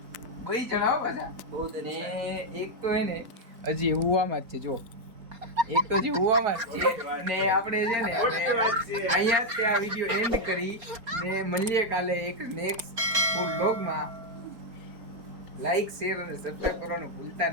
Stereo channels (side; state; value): left; late; 4.3 ms